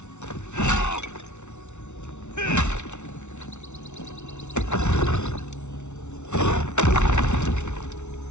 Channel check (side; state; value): right; late; 0.83 ms